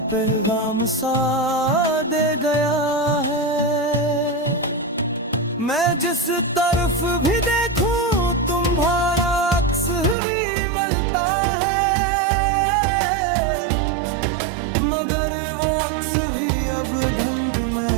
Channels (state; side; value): drops out; left; at 10.2 s